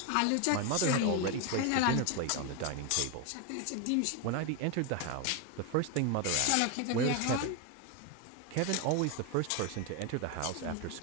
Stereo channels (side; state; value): both; different; correlation 0.01